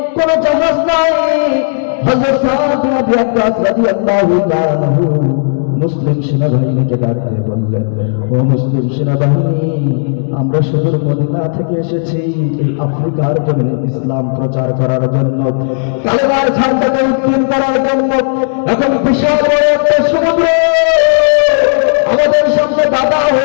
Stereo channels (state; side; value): silent; right; digital silence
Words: কোনো জাহাজ নাই। হযরত সাদ বিন আবি ওয়াক্কাস রাদিয়াল্লাহু তাআলা আনহু মুসলিম সেনাবাহিনীকে ডাক দিয়ে বললেন, ও মুসলিম সেনাবাহিনী, আমরা সুদূর মদিনা থেকে এসেছি এই আফ্রিকার জমিনে ইসলাম প্রচার করার জন্য, কালেমার ঝান্ডাকে উত্তোলন করার জন্য। এখন বিশাল বড় একটা সমুদ্র আমাদের সামনে বাধা